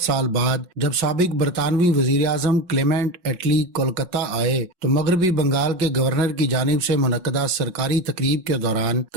بعد جب سابق برطانوی وزیر اعظم کلیمنٹ ایٹلی کولکتہ آئے تو مغربی بنگال کے گورنر کی جانب سے منعقدہ سرکاری تقریب کے دوران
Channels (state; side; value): late; left; 5.5 ms